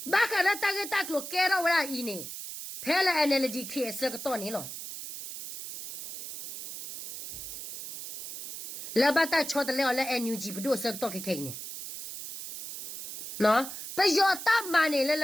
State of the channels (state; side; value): noise; right; hiss, 9 dB below the sound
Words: ba ka la ta ge ta klo ke ro wa i ne phela NLD ke se ka to ne lo la ba ta chot le la NUG ဘတို့စက်တော့ခိနေနော်ပယောတာမနေလ